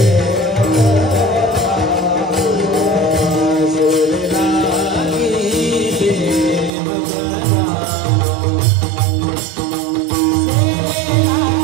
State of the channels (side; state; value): left; drops out; at 6.7 s